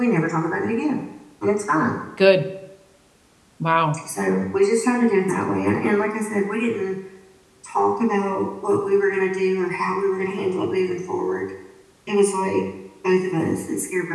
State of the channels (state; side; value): identical; both; correlation 1.00